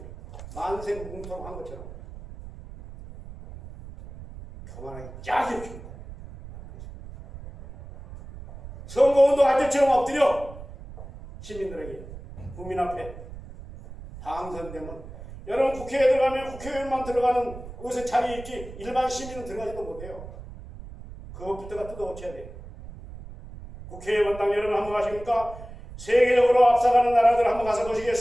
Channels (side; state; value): right; noise; rumble, 14 dB below the sound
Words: 만세뭉통한 것처럼 거만하기 짝이 없습니다. 선거운동할 때처럼 엎드려 시민들에게 국민 앞에 당선되면 여러분 국회에 들어가면 국회의원만 들어가는 곳에 자리에 있지 일반 시민은 들어가지도 못해요. 그것부터가 뜯어고쳐야 돼요. 국회의원당 여러분 한번 가십니까? 세계적으로 앞서가는 나라들 한번 가서